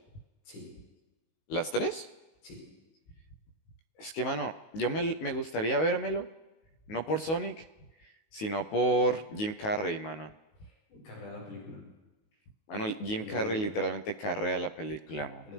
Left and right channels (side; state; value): right; late; 19 ms